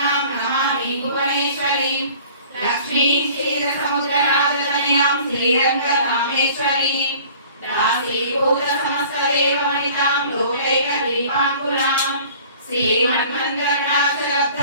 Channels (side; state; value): both; inverted; correlation -0.48